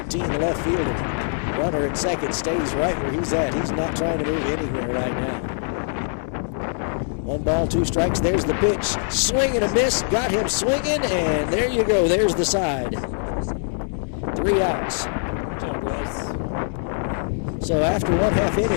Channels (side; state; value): right; silent; digital silence